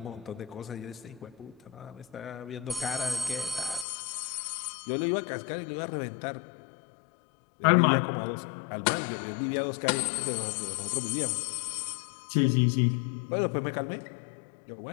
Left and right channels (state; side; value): drops out; right; at 3.9 s